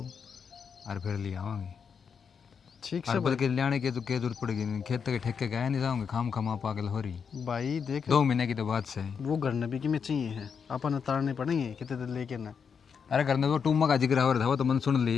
और फिर ले आवांगे। ठीक और से बल्कि ले के तो क्या जरूरत पड़ेगी नहीं, खेत के ठेके गए नहीं जाऊँगे, खाम खमा पागल हो रही। भाई देख 2 महीने की तो बात से है। वो घर नबी की में चाहिए है, अपन उतारने पड़ेंगे कितने दिन लेके ना। अरे करने वो टूमा का जिक्र हो रहा था, वो तो मन सुन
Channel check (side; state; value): right; quieter; 6.5 dB